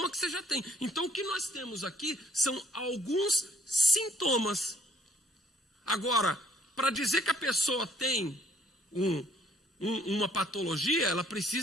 que você já tem. Então, o que nós temos aqui são alguns sintomas. Agora, para dizer que a pessoa tem uma patologia, ela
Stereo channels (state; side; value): normal; both; correlation 0.63